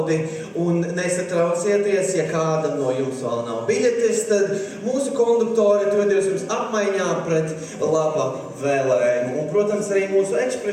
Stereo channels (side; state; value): both; identical; correlation 1.00